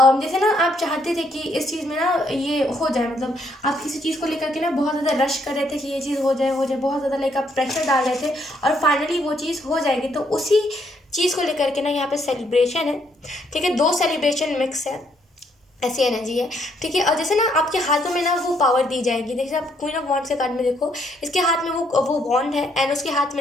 जैसे ना आप चाहते थे कि इस चीज़ में ना ये हो जाए, मतलब आप किसी चीज़ को लेकर के ना बहुत ज़्यादा रश कर रहे थे कि ये चीज़ हो जाए, बहुत ज़्यादा लाइक आप प्रेशर डाल रहे थे, और फाइनली वो चीज़ हो जाएगी. तो उसी चीज़ को लेकर के ना यहाँ पे सेलिब्रेशन है. ठीक है, दो सेलिब्रेशन मिक्स है, ऐसी एनर्जी है. ठीक है, और जैसे ना आपके हाथों में ना वो पावर दी जाएगी. देखिए आप क्वीन ऑफ वॉन्ड्स के कार्ड में देखो, इसके हाथ में वो वॉन्ड है, एंड उसके हाथ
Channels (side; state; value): both; normal; correlation 0.71